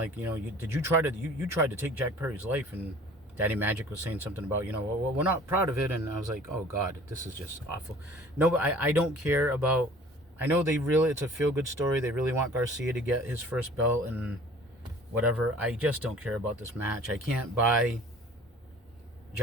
did you try to take Jack Perry's life? And Daddy Magic was saying something about, well, we're not proud of it. And I was like, oh God, this is just awful. No, but I don't care about, I know it's a feel-good story. They really want Garcia to get his first belt and whatever. I just don't care about this match. I can't buy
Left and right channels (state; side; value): normal; both; correlation 0.48